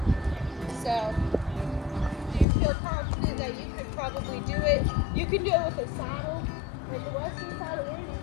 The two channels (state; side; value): drops out; right; at 2.5 s